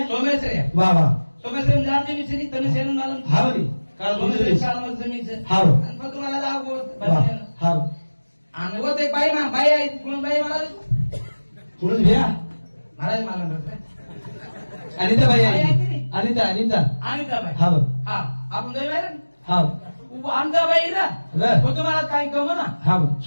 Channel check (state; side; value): inverted; both; correlation -1.00